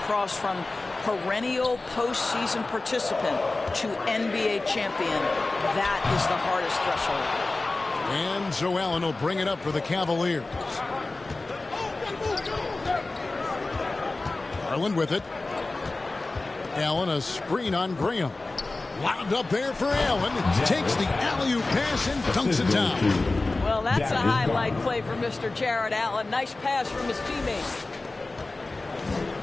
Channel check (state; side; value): quieter; right; 3.2 dB